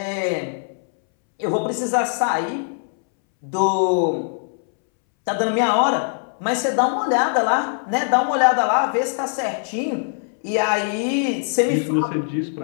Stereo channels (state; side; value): silent; right; 65 dB below the other